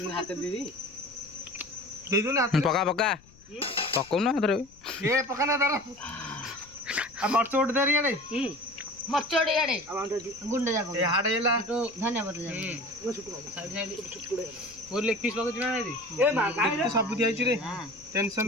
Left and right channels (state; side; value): noise; left; rumble, 26 dB below the sound